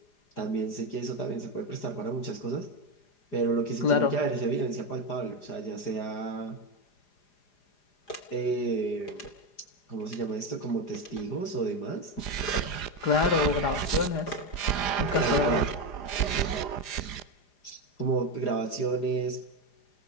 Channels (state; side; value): late; right; 4.9 ms